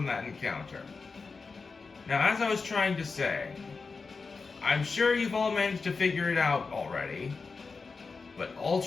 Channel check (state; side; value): quieter; right; 4.5 dB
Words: that encounter. Now, as I was trying to say, I'm sure you've all managed to figure it out already, but